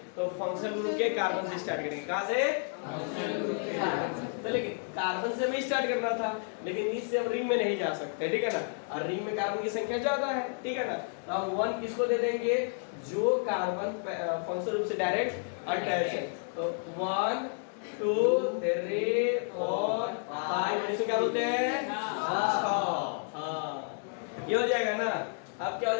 तो फंक्शनल ग्रुप के कार्बन से स्टार्ट करेंगे। कहाँ से? फंक्शनल ग्रुप के कार्बन से। तो लेकिन कार्बन से भी स्टार्ट करना था, लेकिन इससे हम रिंग में नहीं जा सकते, ठीक है ना। और रिंग में कार्बन की संख्या ज्यादा है, ठीक है ना। तो हम 1 किसको दे देंगे? जो कार्बन फंक्शनल ग्रुप से डायरेक्ट अटैच है। तो 1 2 3 4 5, इसको क्या बोलते हैं? हाँ, ये हो जाएगा ना। अब क्या हो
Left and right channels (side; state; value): right; silent; 57 dB below the other